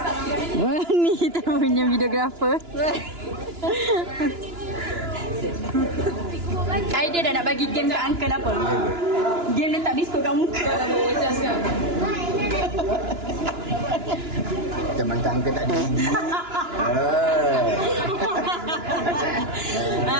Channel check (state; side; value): late; left; 2.9 ms